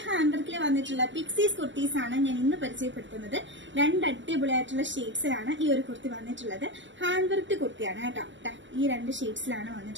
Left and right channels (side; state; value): left; late; 0.54 ms